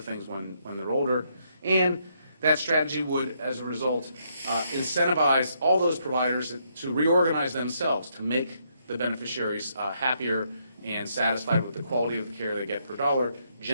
things when they're older. And that strategy would, as a result, incentivize all those providers to reorganize themselves to make the beneficiaries happier and satisfied with the quality of the care they get per dollar,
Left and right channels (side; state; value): both; inverted; correlation -0.75